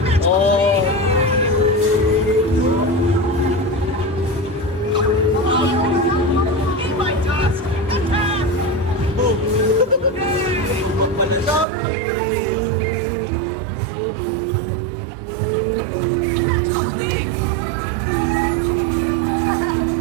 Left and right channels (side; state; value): left; drops out; at 11.7 s